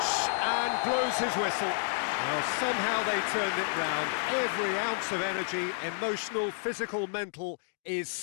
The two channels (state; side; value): silent; right; digital silence